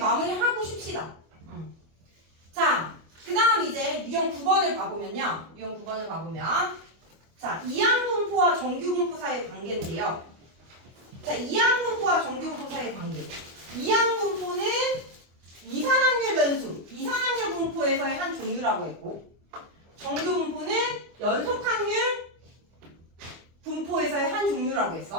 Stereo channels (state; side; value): late; left; 25 ms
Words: 쉽시다. 자, 그 다음 이제 유형 9번을 봐보면요. 유형 9번을 봐보면 자, 이항분포와 정규분포 사이의 관계인데요. 자, 이항분포와 정규분포 사이의 관계. 이항분포는 이산확률 변수, 이산확률 분포에서의 한 종류라고 했고 정규분포는 연속확률 분포에서의 한 종류라고